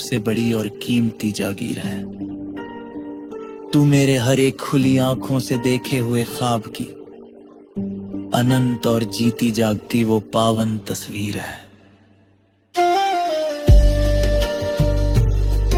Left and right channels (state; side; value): identical; both; correlation 1.00